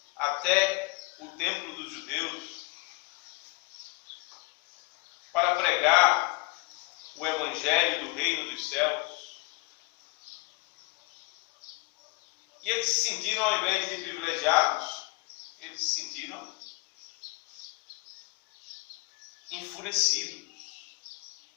até o templo dos judeus para pregar o evangelho do reino dos céus. E eles se sentiram, ao invés de privilegiados, eles se sentiram enfurecidos.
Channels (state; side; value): quieter; right; 26.1 dB